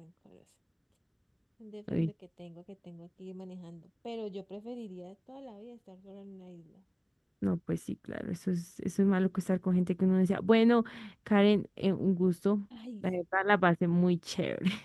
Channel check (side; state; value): both; identical; correlation 1.00